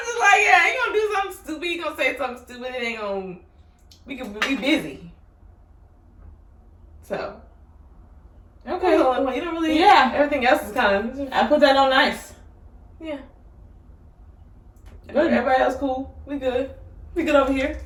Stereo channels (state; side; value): identical; both; correlation 1.00